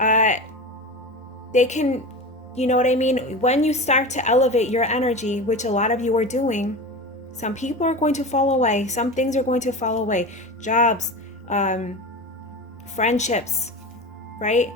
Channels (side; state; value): both; normal; correlation 0.27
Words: They can, you know what I mean? When you start to elevate your energy, which a lot of you are doing, some people are going to fall away. Some things are going to fall away. Jobs, friendships, right?